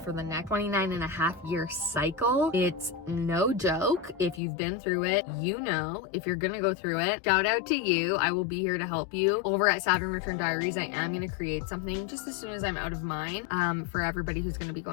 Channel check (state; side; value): drops out; right; at 4.4 s